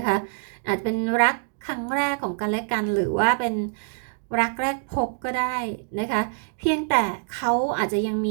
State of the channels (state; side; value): silent; left; digital silence